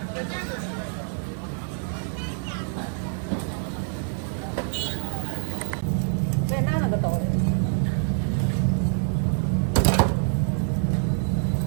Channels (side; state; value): left; silent; 61 dB below the other